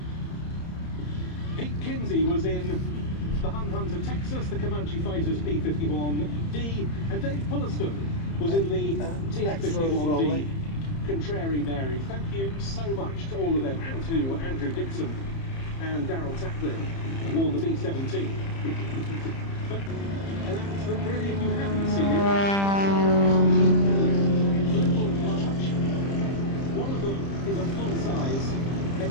Pete Kinsey was in the Hun Hunter Texas, the Comanche Fighters P-51D, and Dave Pulliston was in the TF-51D Contrary Mary. Thank you so much to all of them, and to Andrew Dixon and Daryl Taplin, who wore the B-17. But an accident, really, if you haven't seen it, it's little and large. One of them is a full-size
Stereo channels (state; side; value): late; right; 30 ms